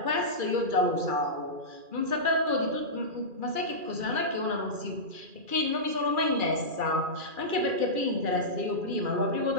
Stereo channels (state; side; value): late; left; 2.4 ms